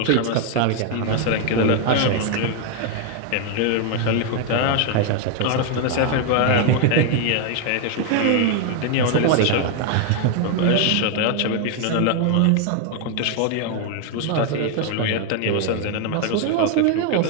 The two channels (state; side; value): different; both; correlation 0.01